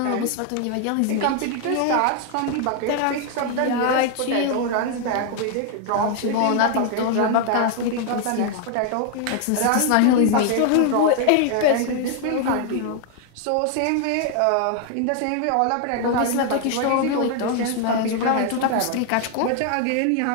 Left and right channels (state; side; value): different; both; correlation 0.00